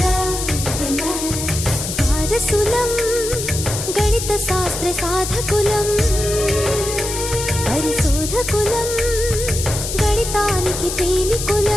వారసులం గణిత శాస్త్ర సాధకులం, పరిశోధకులం, గణితానికి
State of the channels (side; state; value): left; noise; hiss, 5 dB below the sound